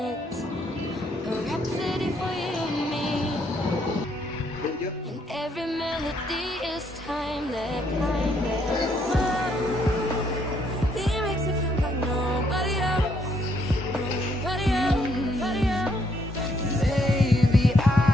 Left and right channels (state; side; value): normal; both; correlation 0.71